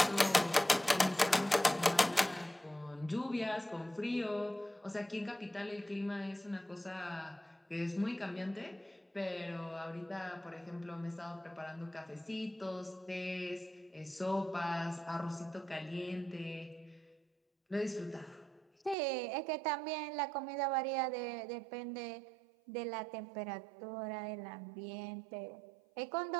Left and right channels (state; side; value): drops out; left; at 18.9 s